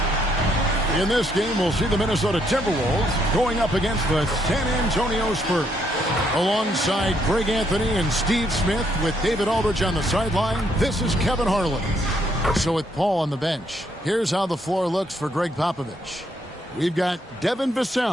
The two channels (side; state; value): both; normal; correlation 0.72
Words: In this game, we'll see the Minnesota Timberwolves going up against the San Antonio Spurs. Alongside Greg Anthony and Steve Smith with David Aldridge on the sideline, this is Kevin Harlan. So with Paul on the bench, here's how the floor looks for Greg Popovich. We've got Devin